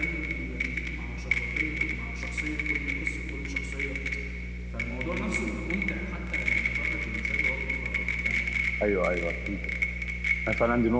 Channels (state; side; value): identical; both; correlation 1.00